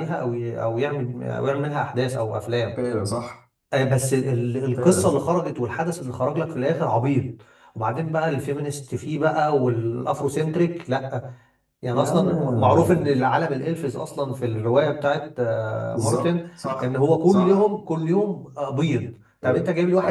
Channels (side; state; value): both; identical; correlation 1.00